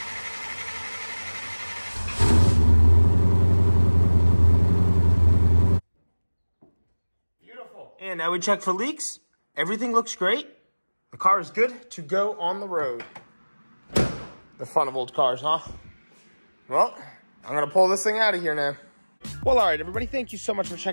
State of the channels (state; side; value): inverted; both; correlation -1.00